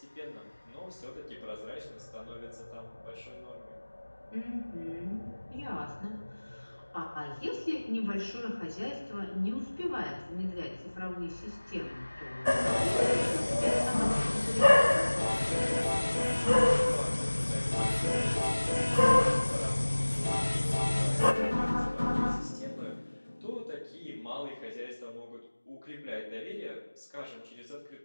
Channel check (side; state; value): both; inverted; correlation -1.00